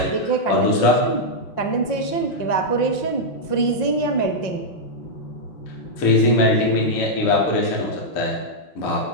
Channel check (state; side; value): late; right; 5.7 ms